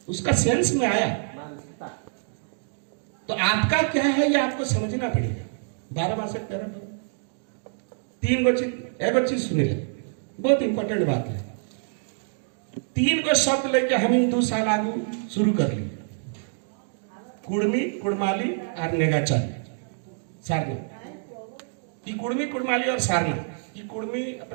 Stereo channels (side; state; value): left; silent; digital silence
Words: उसका सेंस में आया। तो आपका क्या है ये आपको समझना पड़ेगा। 12 मास 3 गो चीज एगो चीज सुनी ले, बहुत इंपॉर्टेंट बात है। 3 गो शब्द लेके हम 2 साल आगू शुरू कर लिए, कुड़मी कुड़माली और नेगाचारी सारना। ये कुड़मी कुड़माली और सारना, ये कुड़मी